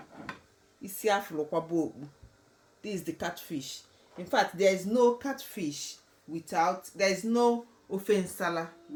isiafulokwabu. This is the catfish. In fact, there is no catfish without, there is no Ofe Nsala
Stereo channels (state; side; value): identical; both; correlation 1.00